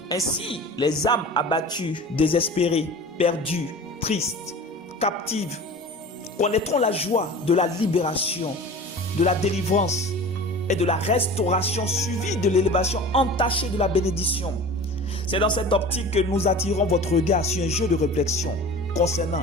Ainsi, les âmes abattues, désespérées, perdues, tristes, captives, connaîtront la joie de la libération, de la délivrance et de la restauration suivie de l'élévation entachée de la bénédiction. C'est dans cette optique que nous attirons votre regard sur un jeu de réflexion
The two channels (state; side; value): normal; both; correlation 0.38